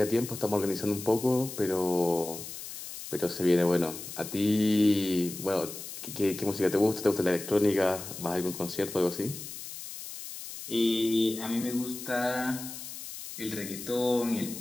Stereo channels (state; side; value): noise; left; hiss, 10 dB below the sound